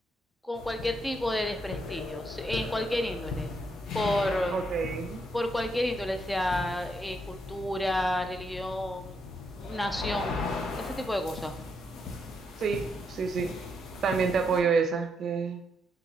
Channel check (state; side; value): normal; both; correlation 0.78